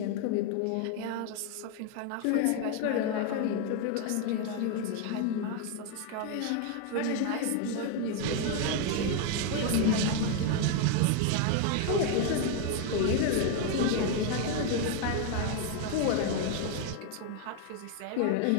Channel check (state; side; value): different; both; correlation 0.01